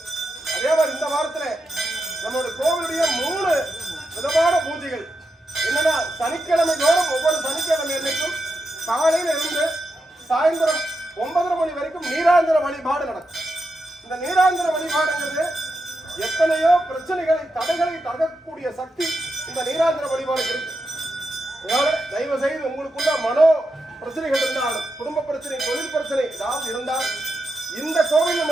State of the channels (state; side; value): normal; both; correlation 0.86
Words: அதே மாதிரி இந்த வாரத்துல நம்மளுடைய கோவிலுடைய 3 விதமான பூஜைகள் என்னன்னா, சனிக்கிழமை தோறும் ஒவ்வொரு சனிக்கிழமை அன்னைக்கும் காலையில இருந்து சாயந்தரம் 9:30 மணி வரைக்கும் நீராந்திர வழிபாடு நடக்கும். இந்த நீராந்திர வழிபாடுங்கிறது எத்தனையோ பிரச்சனைகளை தடைகளை தகக்கூடிய சக்தி இந்த நீராந்திர வழிபாடு இருக்கு. அதனால தயவு செய்து உங்களுக்குள்ள மனோ பிரச்சனைகள் இருந்தாலும், குடும்ப பிரச்சனை, தொழில் பிரச்சனை ஏதாவது இருந்தால் இந்த கோவில்